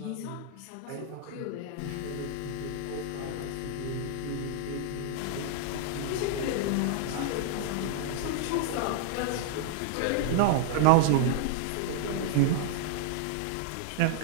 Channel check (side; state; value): both; different; correlation 0.00